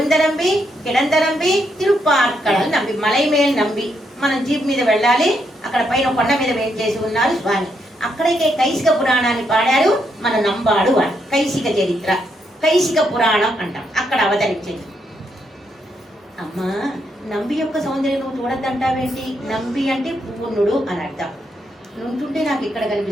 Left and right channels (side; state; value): both; normal; correlation 0.78